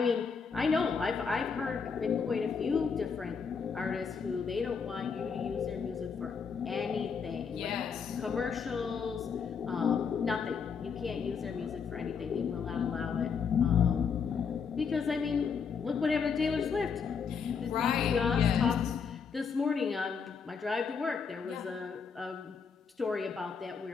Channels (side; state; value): right; quieter; 6.0 dB